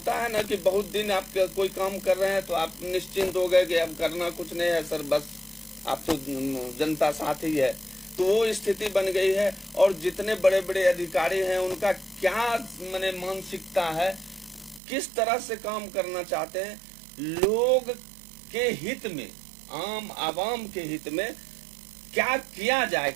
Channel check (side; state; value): left; drops out; at 14.8 s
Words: है ना कि बहुत दिन आप कोई काम कर रहे हैं तो आप निश्चिंत हो गए कि अब करना कुछ नहीं है सर, बस आप तो जनता साथ ही है, तो वो स्थिति बन गई है। और जितने बड़े बड़े अधिकारी हैं उनका क्या माने मानसिकता है, किस तरह से काम करना चाहते हैं, लोग के हित में, आम आवाम के हित में क्या किया जाए,